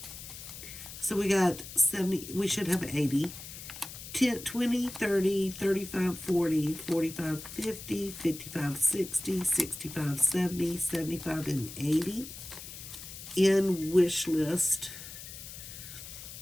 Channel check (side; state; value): left; noise; hiss, 12 dB below the sound